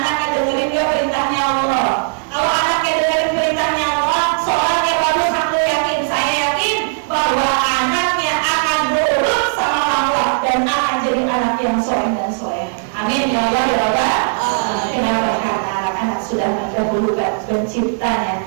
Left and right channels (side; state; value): left; silent; digital silence